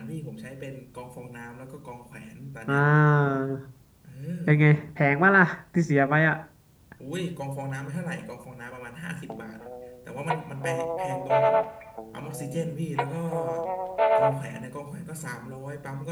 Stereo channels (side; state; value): both; identical; correlation 1.00